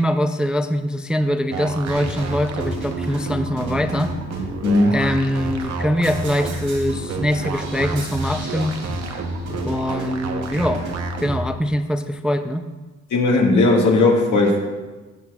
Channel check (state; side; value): normal; both; correlation 0.72